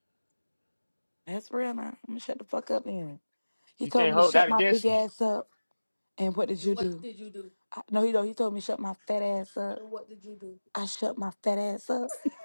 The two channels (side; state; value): both; inverted; correlation -1.00